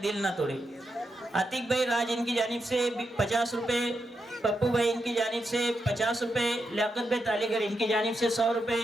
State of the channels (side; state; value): both; normal; correlation 0.85